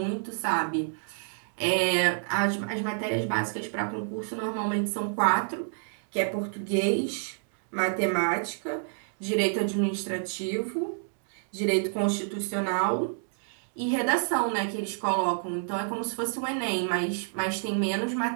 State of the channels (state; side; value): silent; left; digital silence